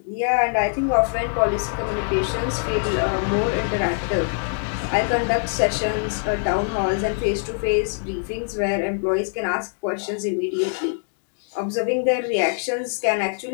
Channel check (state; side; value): silent; right; digital silence